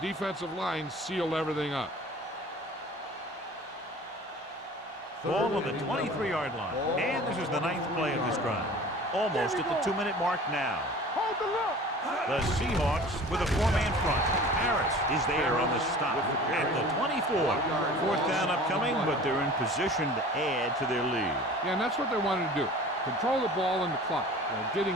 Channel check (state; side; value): normal; both; correlation 0.43